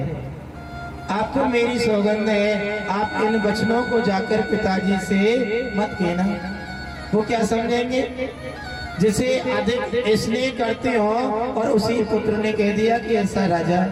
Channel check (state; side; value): identical; both; correlation 1.00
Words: आपको मेरी सौगंध है, आप इन वचनों को जाकर पिताजी से मत कहना। वो क्या समझेंगे, जिसे अधिक स्नेह करते हो और उसी पुत्र ने कह दिया कि ऐसा राजा